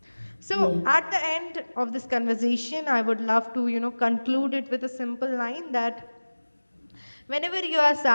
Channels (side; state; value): both; inverted; correlation -1.00